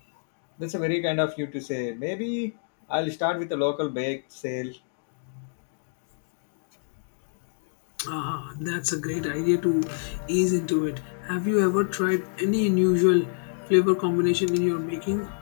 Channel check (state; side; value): silent; right; digital silence